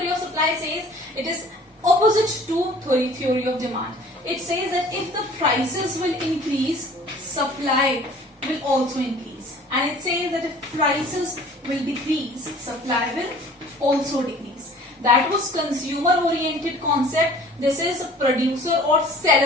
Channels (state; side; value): normal; both; correlation 0.49